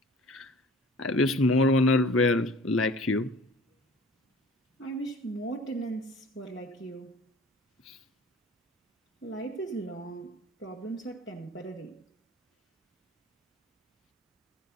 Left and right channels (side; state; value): both; normal; correlation 0.46